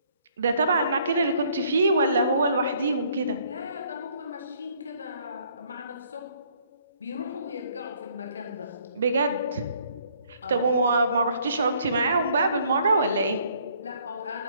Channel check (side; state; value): both; inverted; correlation -0.63